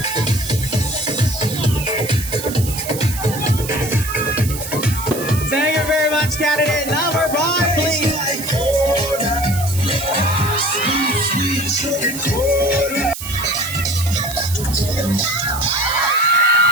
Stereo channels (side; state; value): right; noise; hiss, 9 dB below the sound